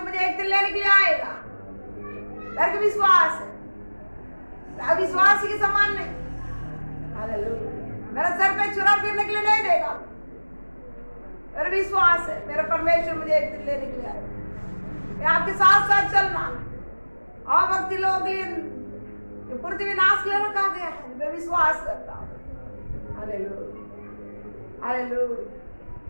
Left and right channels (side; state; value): both; inverted; correlation -1.00